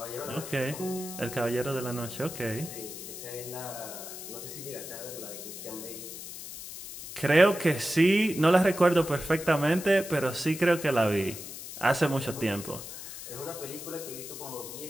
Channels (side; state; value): left; noise; hiss, 11 dB below the sound